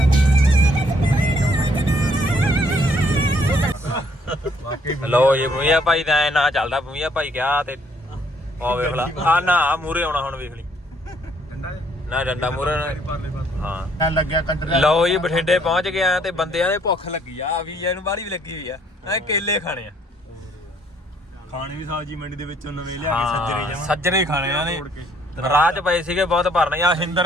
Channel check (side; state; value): both; normal; correlation 0.66